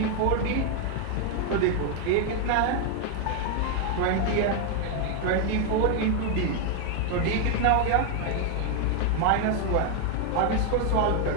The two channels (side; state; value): both; different; correlation 0.01